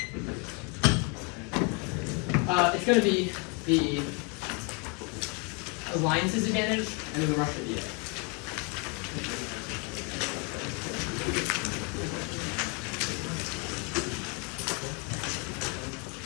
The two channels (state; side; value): quieter; right; 33.7 dB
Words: It's going to be the alliance's advantage and then the Russia DA.